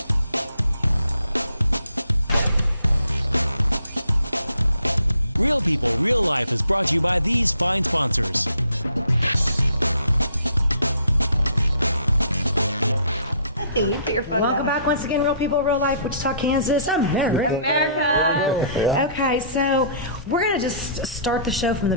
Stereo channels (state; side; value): inverted; both; correlation -0.60